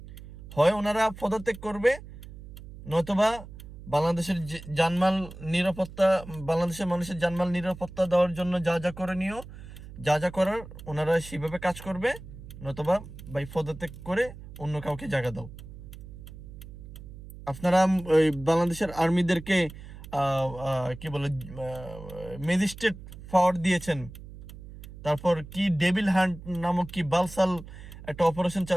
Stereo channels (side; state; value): right; noise; hum, 15 dB below the sound